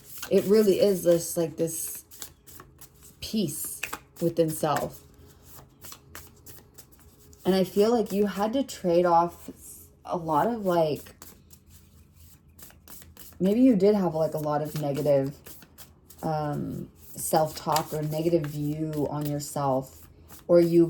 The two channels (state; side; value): identical; both; correlation 1.00